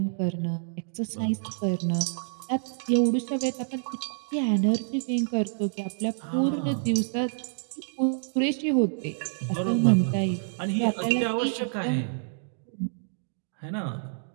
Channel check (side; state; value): left; silent; digital silence